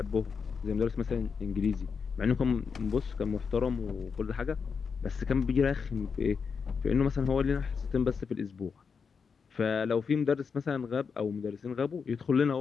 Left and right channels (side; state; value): right; quieter; 5.8 dB